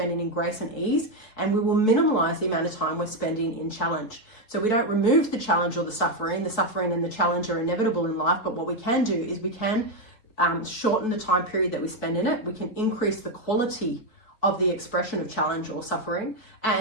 in grace and ease, and we will minimize the amount of time we're spending in challenge. So we don't remove the challenge or the suffering. The suffering and the challenge are inevitable in life, but what we can do is we can shorten the time period that we spend in it. We can increase the quality of the expression of challenge or suffering,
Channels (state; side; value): late; right; 4.6 ms